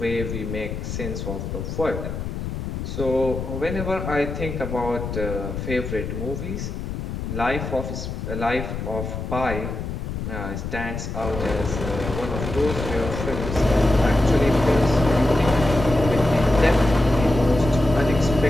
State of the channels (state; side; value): noise; left; rumble, 5 dB below the sound